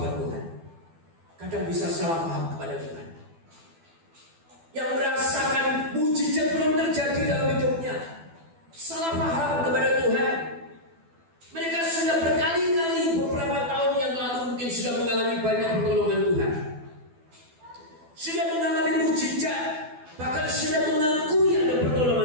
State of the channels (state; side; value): late; left; 12 ms